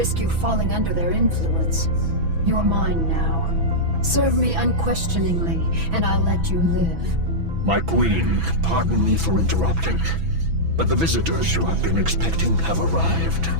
you falling under their influence. You're mine now. Serve me unquestioningly, and I'll let you live. My queen, pardon me for interrupting, but the visitors you have been expecting have arrived.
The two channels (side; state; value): left; late; 6.0 ms